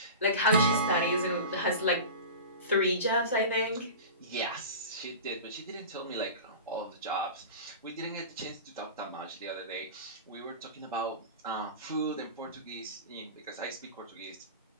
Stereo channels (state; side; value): inverted; both; correlation -0.32